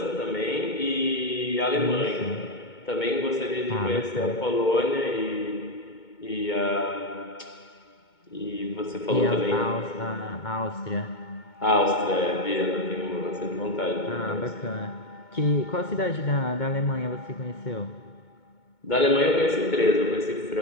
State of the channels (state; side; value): late; right; 2.2 ms